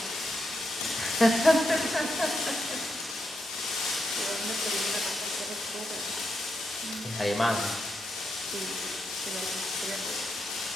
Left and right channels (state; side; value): normal; both; correlation 0.83